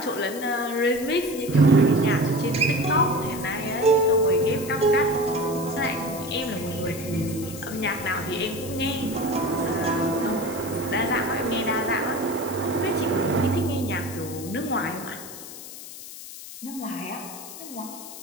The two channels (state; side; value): noise; left; hiss, 13 dB below the sound